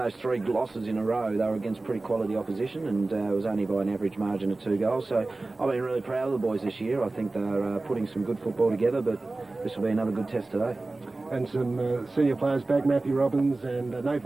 3 losses in a row, they were against pretty quality opposition, and it was only by an average margin of 2 goals. So I've been really proud of the boys this year. I think they're putting some good football together, but this will be another good test today. And some senior players back, Matthew Robbins and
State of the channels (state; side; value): quieter; left; 3.2 dB